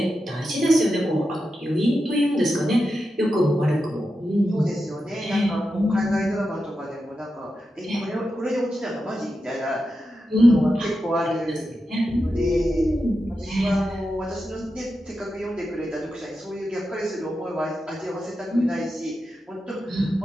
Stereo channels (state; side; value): normal; both; correlation 0.89